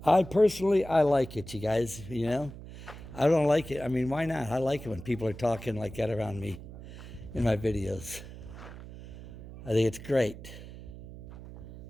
I like it, you guys, you know. I don't like it. I mean, why not? I like it when people are talking like that around me in my videos. I think it's great.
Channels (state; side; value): noise; right; hum, 14 dB below the sound